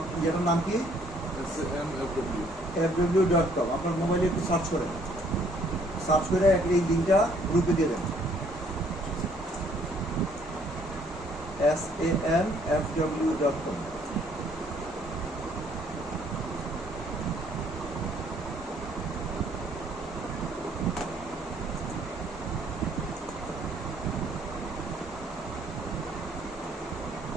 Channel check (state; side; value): normal; both; correlation 0.63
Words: যেটার নাম কি, fw.com। আপনার মোবাইলে একটু সার্চ করেন, সার্চ করে এই লিঙ্কটা গ্রুপে দিয়ে দেন, SAMFW.com।